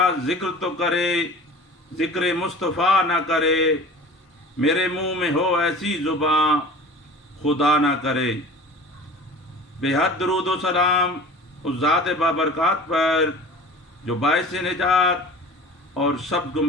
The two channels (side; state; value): both; normal; correlation 0.40